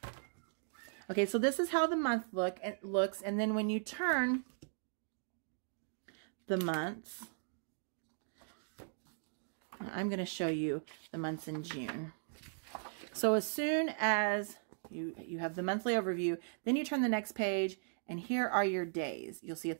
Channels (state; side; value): silent; left; digital silence